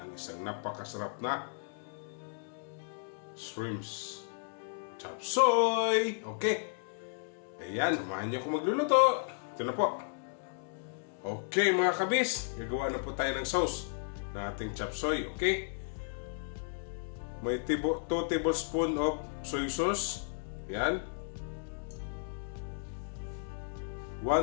isang napakasarap na shrimps chop suey. Okay, ayan, samahan niyo ako magluluto. Ito na po. Okay mga kabis, gagawa na po tayo ng sauce ng ating chop suey. Okay, may 2 tablespoon of soy sauce. Ayan,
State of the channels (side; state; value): right; silent; digital silence